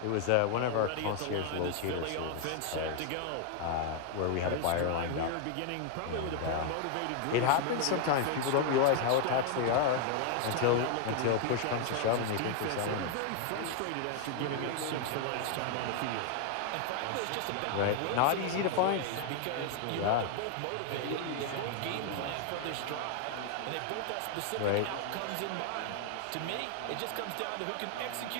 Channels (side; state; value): both; different; correlation 0.00